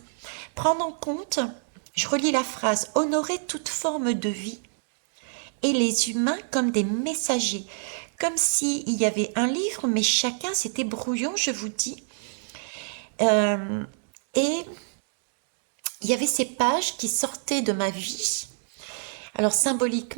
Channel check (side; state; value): left; silent; digital silence